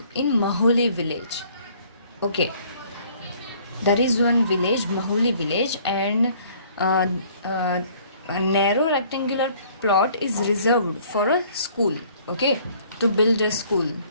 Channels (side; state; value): both; inverted; correlation -0.58